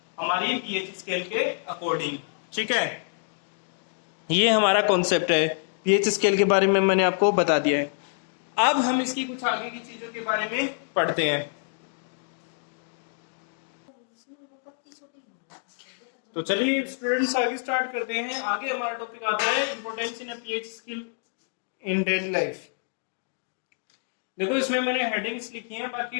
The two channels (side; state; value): right; silent; digital silence